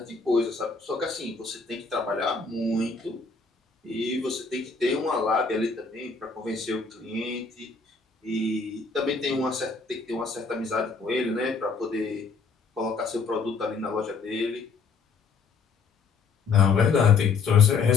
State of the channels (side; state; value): right; quieter; 4.8 dB